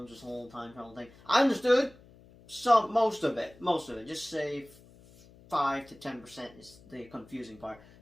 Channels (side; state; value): left; noise; hum, 24 dB below the sound